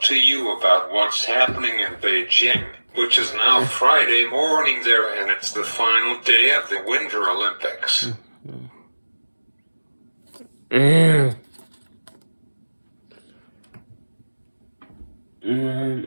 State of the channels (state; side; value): inverted; both; correlation -1.00